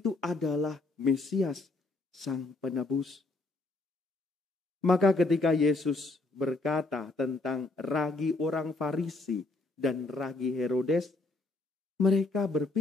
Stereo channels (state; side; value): quieter; right; 3.2 dB